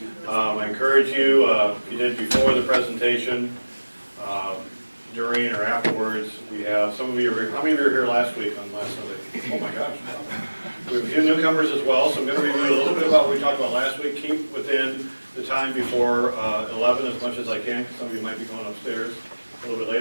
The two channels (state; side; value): inverted; both; correlation -1.00